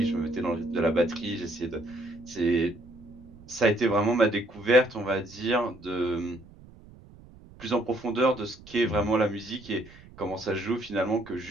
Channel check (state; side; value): noise; right; rumble, 22 dB below the sound